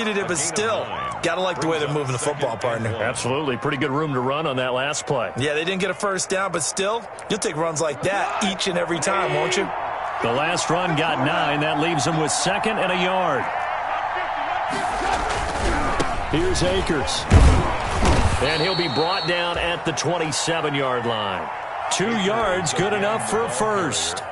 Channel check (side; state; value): both; identical; correlation 1.00